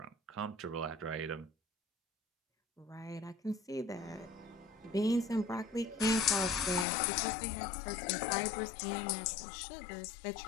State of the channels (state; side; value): drops out; right; at 6.9 s